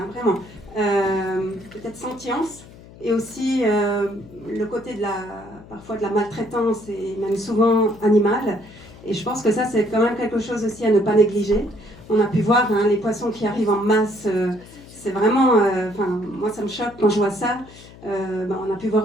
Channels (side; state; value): left; noise; hum, 20 dB below the sound